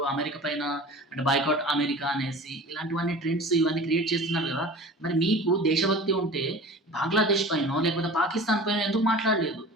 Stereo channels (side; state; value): both; normal; correlation 0.39